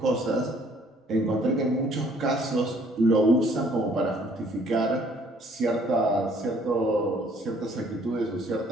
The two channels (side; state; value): both; normal; correlation 0.60